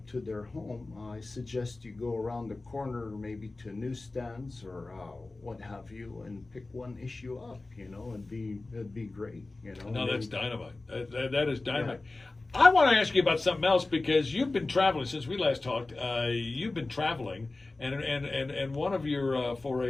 to their home, I suggest you go around the corner, maybe to newsstands or what have you, and pick one issue up. You know, it'd be great. You know. No, that's dynamite. That is dynamite. Yeah. I want to ask you about something else, because you've been traveling since we last talked. You've been traveling, and one of your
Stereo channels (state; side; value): quieter; right; 3.2 dB